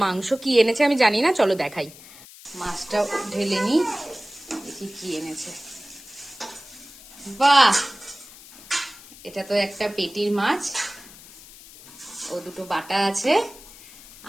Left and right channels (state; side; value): noise; left; hiss, 19 dB below the sound